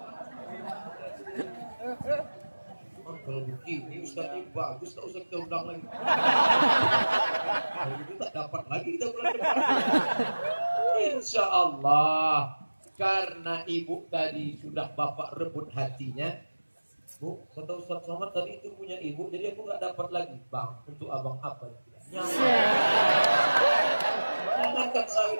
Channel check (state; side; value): inverted; both; correlation -1.00